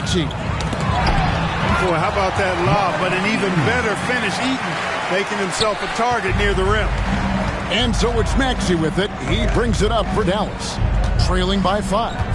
Boy, how about that lob? But an even better finish. Eaton making himself a target near the rim. And so it's Maxey with it. He brings it up for Dallas, trailing by 5.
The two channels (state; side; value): identical; both; correlation 1.00